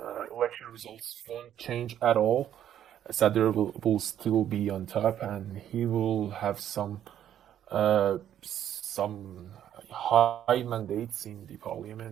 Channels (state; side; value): quieter; left; 10.6 dB